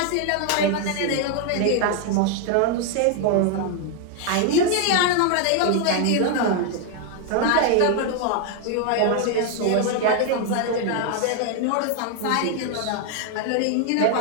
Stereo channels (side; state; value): both; different; correlation 0.00